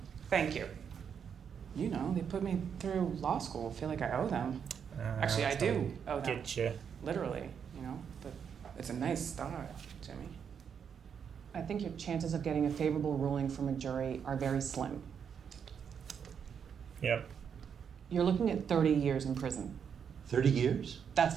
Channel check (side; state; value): left; quieter; 7.3 dB